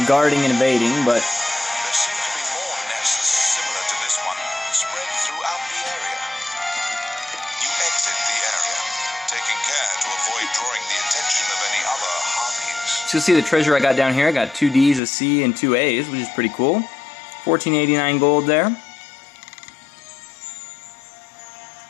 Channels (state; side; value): drops out; right; at 15.0 s